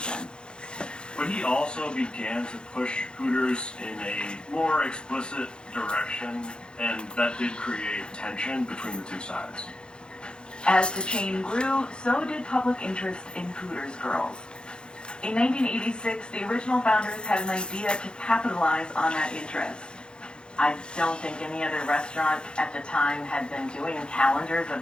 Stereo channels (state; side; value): late; right; 0.050 ms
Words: But he also began to push Hooters in a more explicit direction, and that did create tension between the two sides. As the chain grew, so did public interest in Hooters girls. In 1986, the original founders had an idea to capitalize on that interest. I don't think any other restaurant at the time had been doing calendars